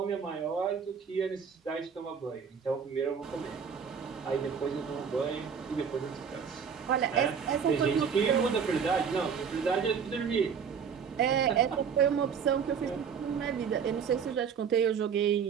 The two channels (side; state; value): left; quieter; 6.8 dB